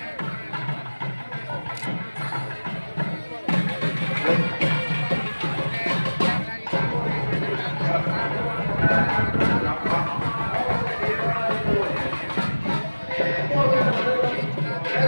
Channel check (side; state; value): both; inverted; correlation -1.00